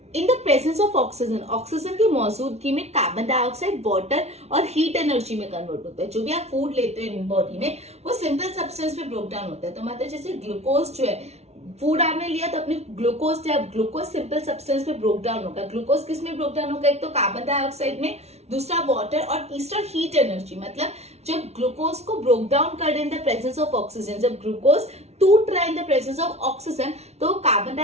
in the presence of oxygen की मौजूदगी में कार्बन डाइऑक्साइड, वाटर और हीट एनर्जी में कन्वर्ट होता है। जो भी आप फूड लेते हो इन बॉडी में वो सिंपल सब्सटेंस में ब्रोक डाउन होता है। तो मतलब जैसे ग्लूकोज जो है, फूड आपने लिया तो अपने ग्लूकोज सिंपल सब्सटेंस में ब्रोक डाउन होगा। ग्लूकोज किस में ब्रोक डाउन होगा, एक तो कार्बन डाइऑक्साइड में, दूसरा वाटर, और तीसरा हीट एनर्जी। मतलब जब ग्लूकोज को ब्रोक डाउन कर रहे in the presence of oxygen, जब ग्लूकोज टूट रहा है in the presence of oxygen, तो कार्बन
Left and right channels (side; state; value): left; late; 0.31 ms